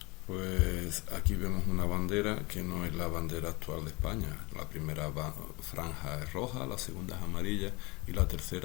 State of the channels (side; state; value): right; quieter; 25.4 dB